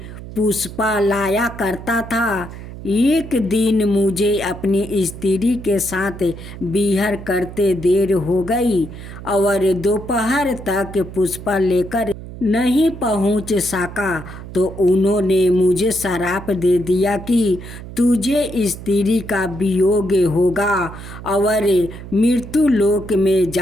पुष्पा लाया करता था। एक दिन मुझे अपनी स्त्री के साथ विहार करते देर हो गई और दोपहर तक पुष्पा लेकर नहीं पहुंच सका तो उन्होंने मुझे श्राप दे दिया कि तुझे स्त्री का वियोग होगा और मृत्यु लोक में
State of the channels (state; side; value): noise; right; hum, 13 dB below the sound